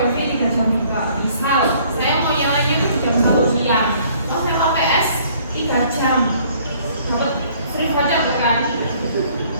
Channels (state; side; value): inverted; both; correlation -0.59